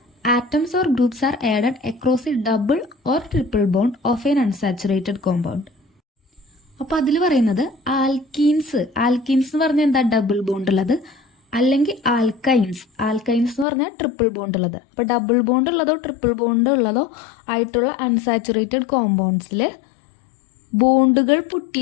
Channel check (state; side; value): drops out; right; at 13.7 s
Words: atoms or groups are added across a double or triple bond of an unsaturated compound. അപ്പോൾ അതിൽ പറയുന്നത് ആൽക്കീൻസ് എന്ന് പറഞ്ഞാൽ എന്താ? ഡബിൾ ബോണ്ട് ഉള്ളത്. അല്ലെങ്കിൽ ആൽക്കൈൻസ് എന്ന് പറഞ്ഞാൽ ട്രിപ്പിൾ ബോണ്ട് ഉള്ളത്. അപ്പോൾ ഡബിൾ ബോണ്ട് ഉള്ളതോ ട്രിപ്പിൾ ബോണ്ട് ഉള്ളതോ ആയിട്ടുള്ള അൺസാച്ചുറേറ്റഡ് കോമ്പൗണ്ട്സിൽ ബോണ്ടുകൾ